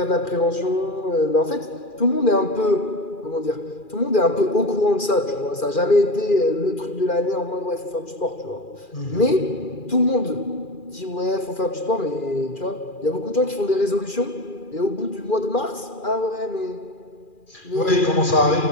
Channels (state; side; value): late; right; 2.4 ms